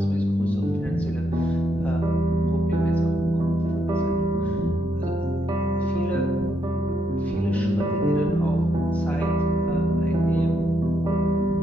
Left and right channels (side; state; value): both; normal; correlation 0.77